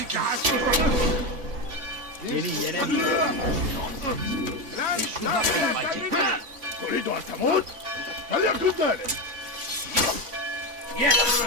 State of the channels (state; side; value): late; left; 3.5 ms